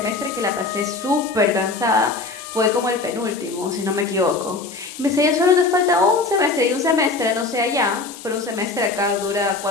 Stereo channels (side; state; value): right; quieter; 3.7 dB